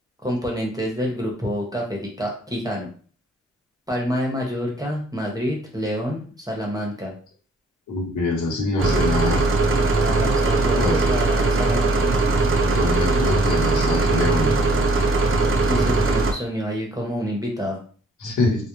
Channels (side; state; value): both; normal; correlation 0.61